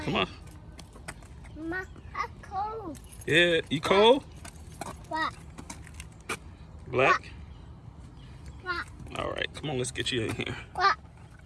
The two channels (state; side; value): identical; both; correlation 1.00